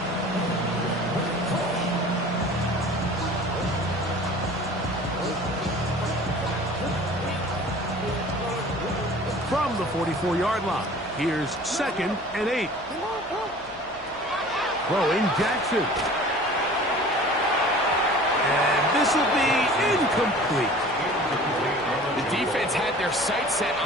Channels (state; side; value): noise; right; hum, 23 dB below the sound